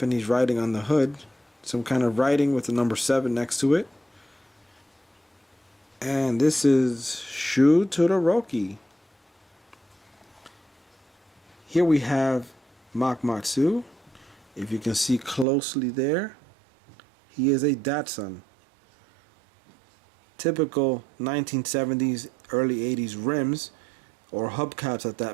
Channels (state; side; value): drops out; left; at 15.5 s